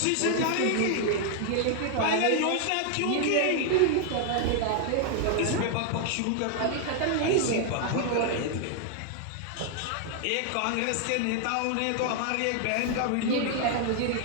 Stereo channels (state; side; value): different; both; correlation 0.00